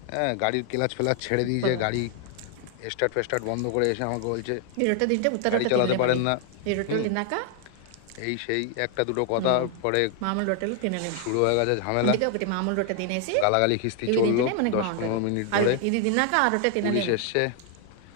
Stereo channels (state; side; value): different; both; correlation 0.00